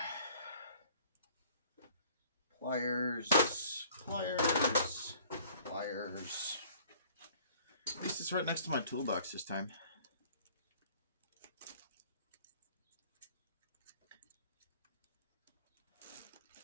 Pliers. At least it's right next to my toolbox this time.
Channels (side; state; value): both; inverted; correlation -0.54